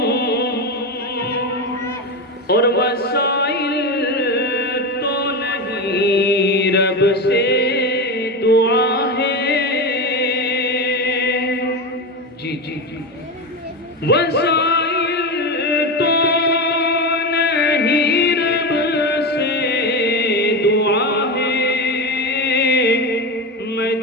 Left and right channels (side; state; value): both; normal; correlation 0.18